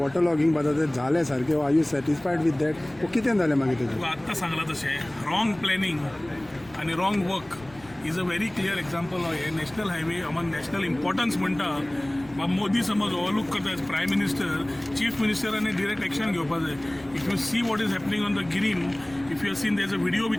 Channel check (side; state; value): left; noise; rumble, 23 dB below the sound